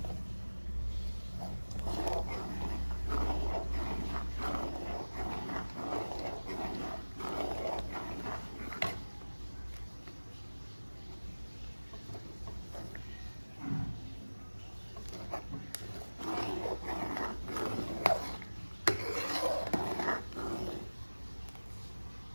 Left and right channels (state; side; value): inverted; both; correlation -1.00